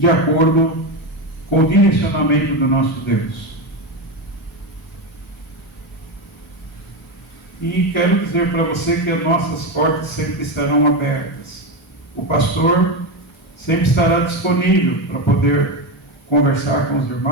acordo com o direcionamento do nosso Deus. E quero dizer para você que as nossas portas sempre estarão abertas. O pastor sempre estará disponível para poder conversar com os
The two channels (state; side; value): normal; both; correlation 0.14